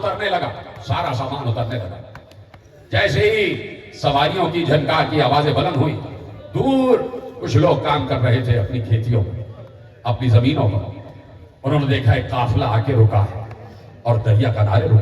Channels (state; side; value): identical; both; correlation 1.00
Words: لگا، سارا سامان اترنے لگا۔ جیسے ہی سواریوں کی جھنکار کی آوازیں بلند ہوئی، دور کچھ لوگ کام کر رہے تھے اپنی کھیتیوں میں، اپنی زمینوں پر۔ انہوں نے دیکھا ایک قافلہ آ کے رکا ہے اور دریا کنارے